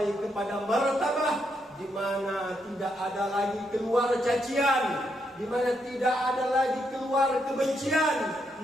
kepada martabah di mana tidak ada lagi keluar cacian, di mana tidak ada lagi keluar kebencian,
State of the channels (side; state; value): both; normal; correlation 0.79